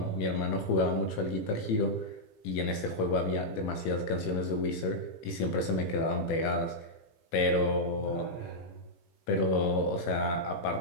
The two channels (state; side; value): late; right; 18 ms